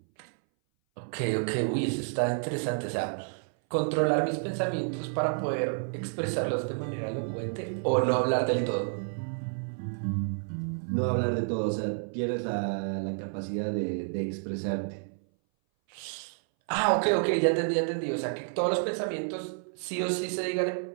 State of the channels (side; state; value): left; silent; 58 dB below the other